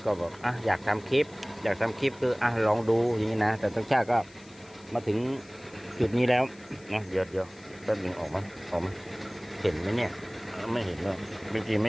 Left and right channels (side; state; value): left; noise; hiss, 25 dB below the sound